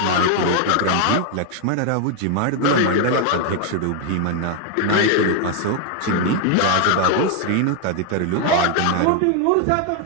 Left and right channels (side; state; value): both; different; correlation 0.00